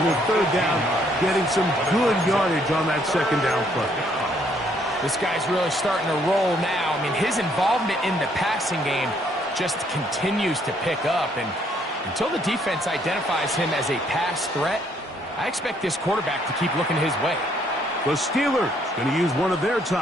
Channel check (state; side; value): normal; both; correlation 0.68